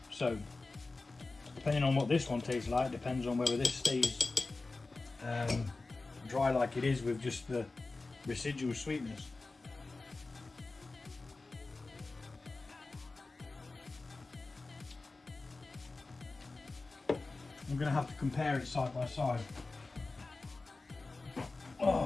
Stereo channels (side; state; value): right; quieter; 3.5 dB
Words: So depending on what this one tastes like, depends on whether this stays dry like it is with just the residual sweetness. I'm going to have to compare it side by side.